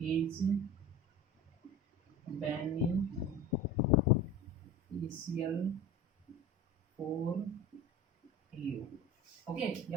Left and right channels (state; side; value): normal; both; correlation 0.33